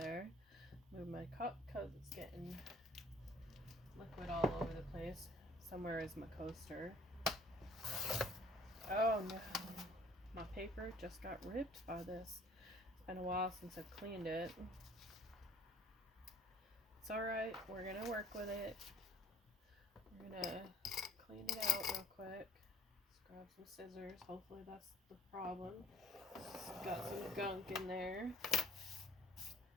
Move my cup because it's getting liquid all over the place. Somewhere is my coaster. Oh no, my paper just got ripped by this. It's been a while since I've cleaned it. It's alright, we're going to work with it. We're going to clean it out real quick. Let's grab some scissors. Hopefully that's the problem. It's got some gunk in there.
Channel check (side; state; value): both; normal; correlation 0.54